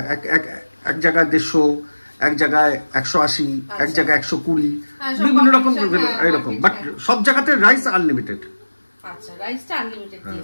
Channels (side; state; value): both; inverted; correlation -1.00